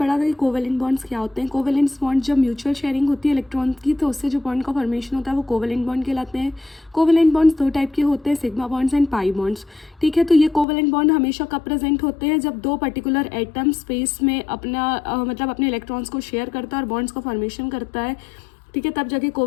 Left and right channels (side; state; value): right; drops out; at 10.7 s